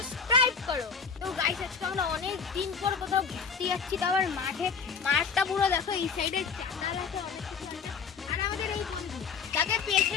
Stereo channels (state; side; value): quieter; right; 5.9 dB